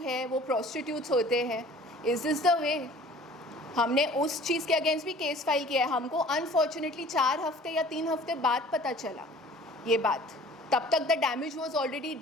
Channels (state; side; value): normal; both; correlation 0.48